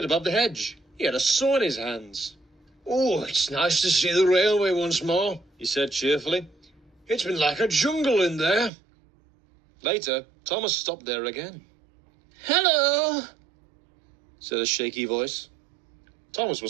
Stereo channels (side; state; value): left; drops out; at 8.7 s